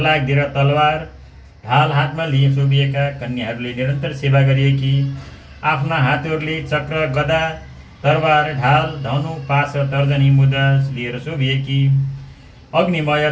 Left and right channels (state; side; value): identical; both; correlation 1.00